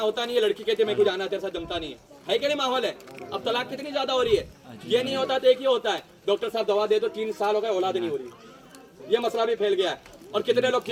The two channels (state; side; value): identical; both; correlation 1.00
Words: نہیں ہے, لڑکی کہتی ہے میں کو جانا تیرے ساتھ جمتا نہیں ہے کہ نہیں ماحول ہے. اب طلاق کتنی زیادہ ہو رہی ہے, یہ نہیں ہوتا تو ایک ہی ہوتا ہے, ڈاکٹر صاحب دوا دے دو 3 سال ہو گئے اولاد نہیں ہو رہی. یہ مسئلہ بھی پھیل گیا ہے. اور کتنے لوگ